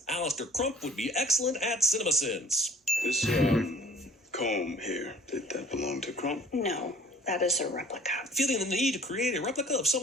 Alistair Crump would be excellent at CinemaSins. This comb here, did that belong to Crump? No, that is a replica. Feeling the need to create a replica of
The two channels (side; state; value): both; normal; correlation 0.52